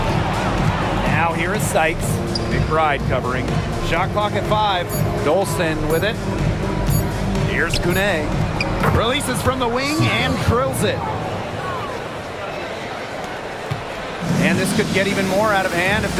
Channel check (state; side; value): identical; both; correlation 1.00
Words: Now here is Sykes. McBride covering. Shot clock at 5. Dolson with it. Here's Kune. Releases from the wing and drills it. And this could get even more out of hand if